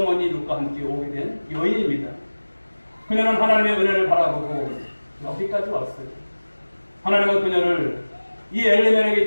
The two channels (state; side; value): inverted; both; correlation -1.00